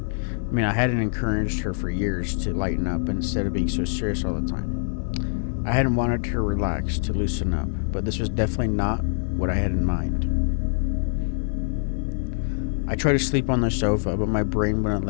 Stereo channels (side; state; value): right; silent; digital silence